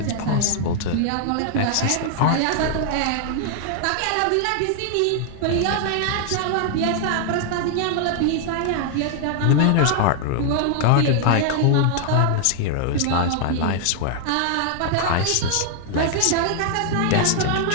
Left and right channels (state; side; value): different; both; correlation 0.00